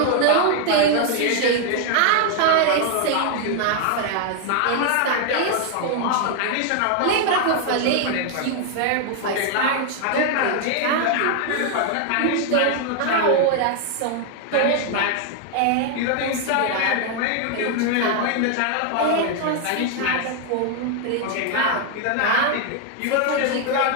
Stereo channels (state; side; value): different; both; correlation 0.00